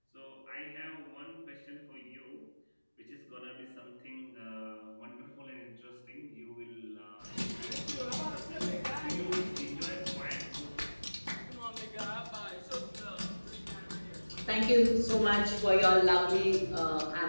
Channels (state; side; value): inverted; both; correlation -1.00